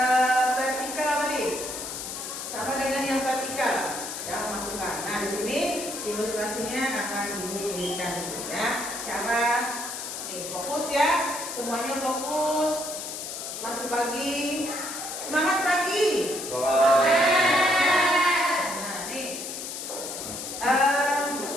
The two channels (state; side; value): noise; left; hiss, 7 dB below the sound